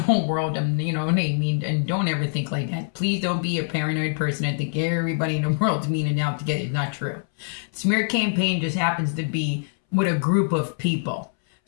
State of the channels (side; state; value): right; silent; 63 dB below the other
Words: whole world, mean, and don't ever think like that. Please don't be a paranoid person and think everybody in the world's mean and out to get it. It's not true. Smear campaign just happens to be with a group of people.